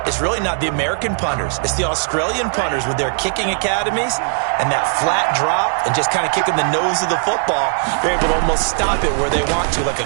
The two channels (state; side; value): silent; left; 58 dB below the other